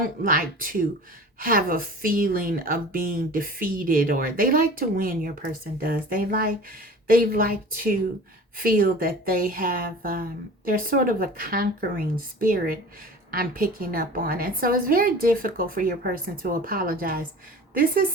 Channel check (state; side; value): normal; both; correlation 0.40